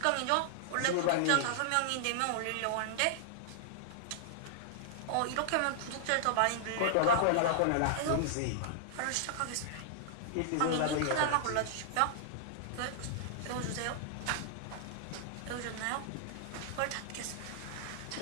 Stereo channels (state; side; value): different; both; correlation -0.01